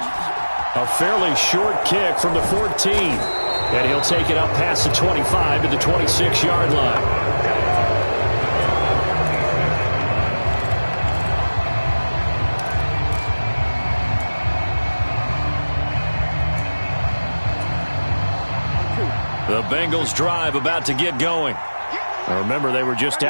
A fairly short kick from the 14. And he'll take it up past the 25 to the 26-yard line. The Bengals drive about to get going. Now remember, they were just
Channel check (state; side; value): inverted; both; correlation -1.00